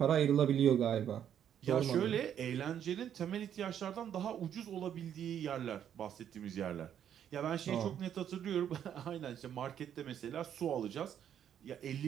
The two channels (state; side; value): quieter; left; 9.5 dB